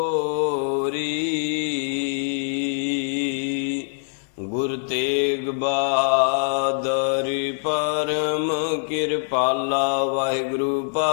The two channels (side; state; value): right; silent; digital silence